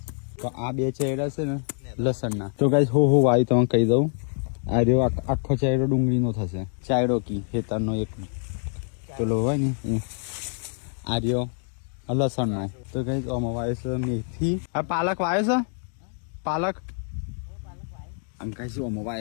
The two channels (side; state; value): right; silent; 55 dB below the other